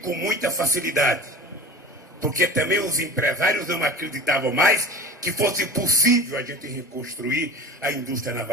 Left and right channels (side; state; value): both; normal; correlation 0.36